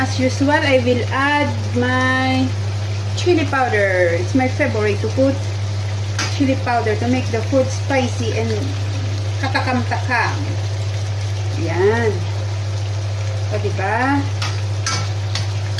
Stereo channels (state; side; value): identical; both; correlation 1.00